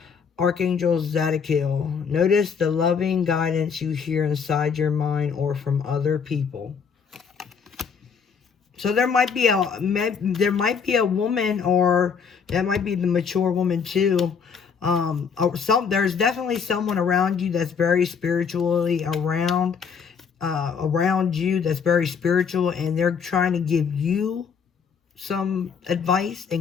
Archangel Zadkiel, notice the loving guidance you hear inside your mind or from other people. So there might be a woman, or that might be the mature woman too. There's definitely someone around you that's very spiritually around you, that's very spiritual, and they're trying to give you some advice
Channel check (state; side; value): quieter; right; 6.3 dB